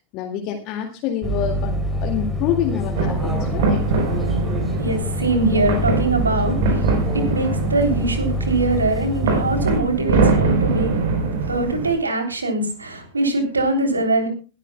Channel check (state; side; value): normal; both; correlation -0.18